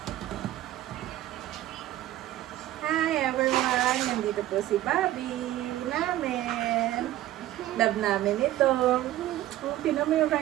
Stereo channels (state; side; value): quieter; left; 14.4 dB